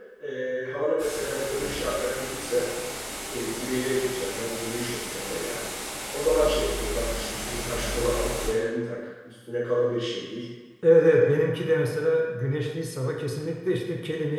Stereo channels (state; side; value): identical; both; correlation 1.00